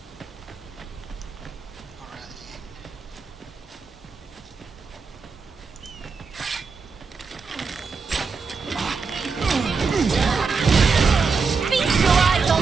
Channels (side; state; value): left; quieter; 5.0 dB